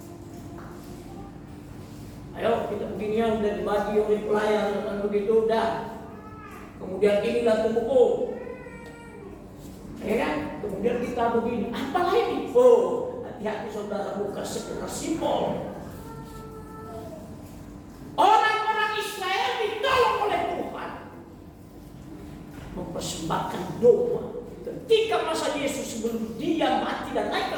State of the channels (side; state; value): both; identical; correlation 1.00